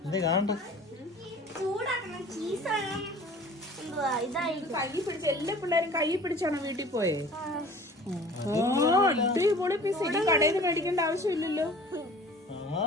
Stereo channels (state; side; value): normal; both; correlation 0.46